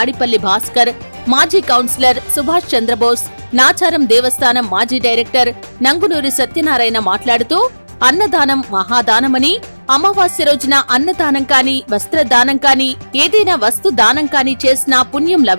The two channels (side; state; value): both; inverted; correlation -1.00